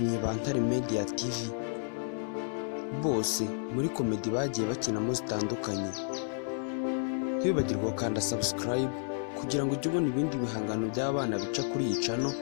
ba Ntare Media TV bose muri komedi bagiye bakinamo zitandukanye. Ntibibagirwe gukanda subscribe kugira ngo ujye ubona ibindi bihangano by'abana bica kuri iyi channel,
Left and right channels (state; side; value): silent; right; 57 dB below the other